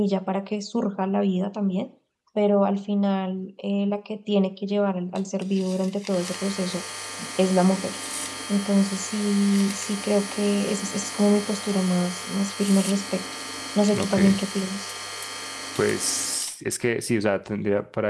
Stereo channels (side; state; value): both; identical; correlation 1.00